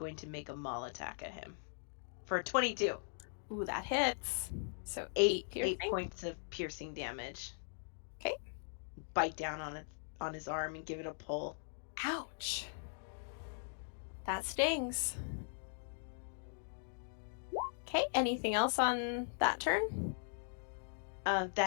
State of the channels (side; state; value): right; silent; digital silence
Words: maul attack at him for 22. Ooh, that hits. So 8 piercing. points of piercing damage. Okay. Bite down on his arm and give it a pull. Ouch. That stings. Okay, anything else on that turn?